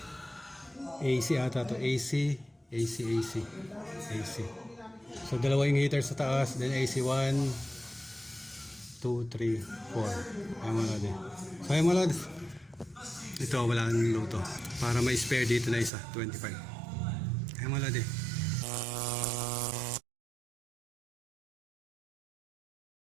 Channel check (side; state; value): left; drops out; at 15.9 s